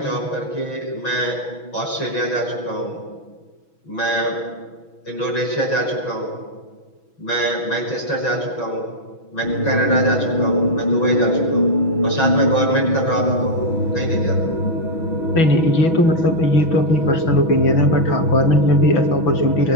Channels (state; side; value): late; right; 6.1 ms